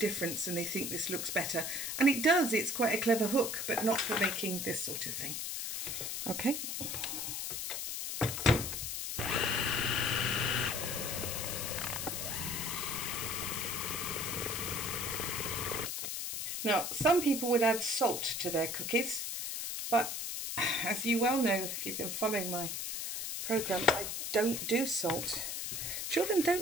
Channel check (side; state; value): left; noise; hiss, 3 dB below the sound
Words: and they think this looks better. And it does, it's quite a clever hook, but not for making this sort of thing. Okay. Now, some people would add salt to their cookies, but as you well know, if you've been following my programme, I don't do salt. Children